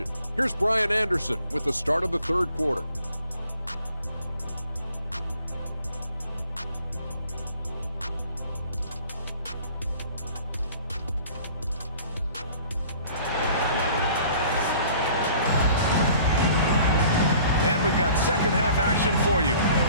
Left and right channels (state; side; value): inverted; both; correlation -0.51